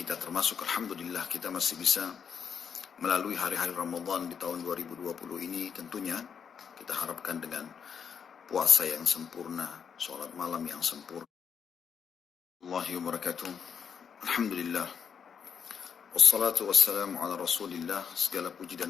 termasuk Alhamdulillah kita masih bisa melalui hari-hari Ramadan di tahun 2020 ini. Tentunya kita harapkan dengan puasa yang sempurna, sholat malam yang sempurna. Allahi wa barakatuh. Alhamdulillah. Wassalatu wassalamu ala rasulillah. Segala puji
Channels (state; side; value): quieter; right; 7.1 dB